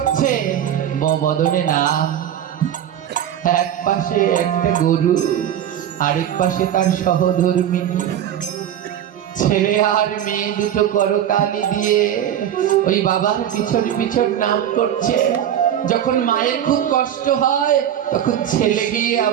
বদনে নাম। এক পাশে একটা গরু, আরেক পাশে তার সহধর্মিনী। ছেলে আর মেয়ে দুটো করতালি দিয়ে ওই বাবার পিছন পিছন নাম করছে। যখন মায়ের খুব কষ্ট হয়, তখন ছেলে গিয়ে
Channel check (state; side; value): quieter; left; 10.3 dB